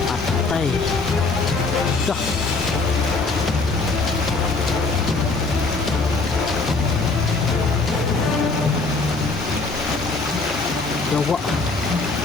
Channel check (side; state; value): right; quieter; 3.7 dB